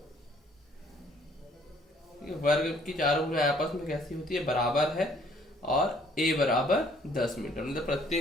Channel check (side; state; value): both; normal; correlation 0.61